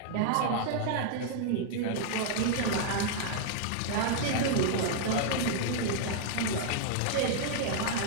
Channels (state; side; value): different; both; correlation -0.01